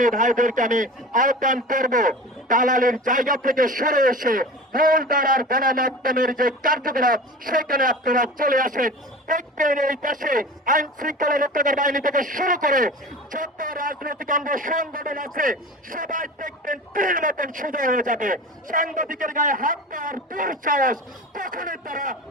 ভাইদেরকে আমি আহ্বান করব, দালালের জায়গা থেকে সরে এসে মূল ধারার গণমাধ্যমের যে কার্যকলাপ সেখানে আপনারা চলে আসেন। দেখবেন এই দেশে আইন শৃঙ্খলা রক্ষাকারী বাহিনী থেকে শুরু করে যত রাজনৈতিক অঙ্গ সংগঠন আছে সবাই দেখবেন তীর মতন সোজা হয়ে যাবে। সাংবাদিকের গায়ে হাত দেওয়ার দুঃসাহস কখনোই তারা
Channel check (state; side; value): normal; both; correlation 0.34